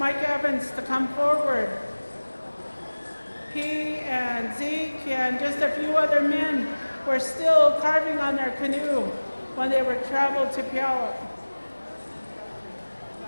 Evans to come forward. He and Zeke and just a few other men were still carving on their canoe when they were traveled to Puyallup.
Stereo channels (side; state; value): both; inverted; correlation -1.00